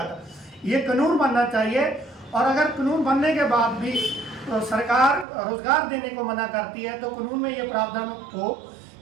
ये कानून बनना चाहिए। और अगर कानून बनने के बाद भी सरकार रोजगार देने को मना करती है तो कानून में ये प्रावधान हो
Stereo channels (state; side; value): drops out; left; at 5.2 s